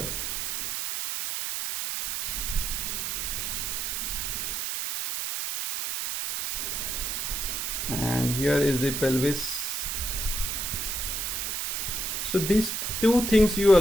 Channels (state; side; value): noise; right; hiss, 2 dB below the sound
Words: And here is the pelvis. So these two things you